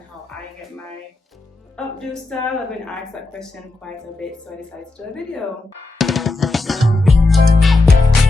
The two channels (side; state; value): right; quieter; 3.2 dB